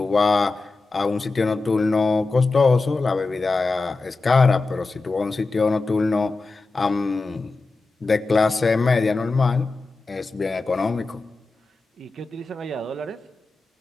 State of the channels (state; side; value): quieter; right; 3.7 dB